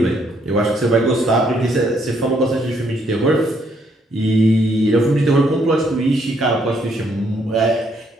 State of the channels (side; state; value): both; normal; correlation 0.71